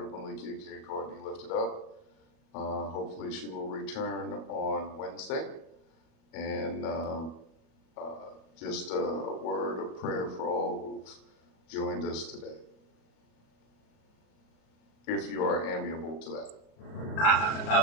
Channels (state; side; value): late; right; 37 ms